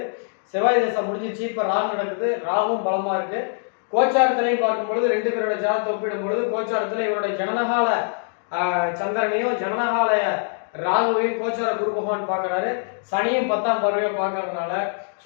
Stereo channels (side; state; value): right; silent; 63 dB below the other